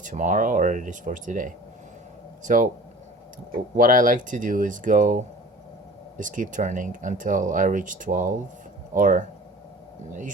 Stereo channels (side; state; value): both; normal; correlation 0.43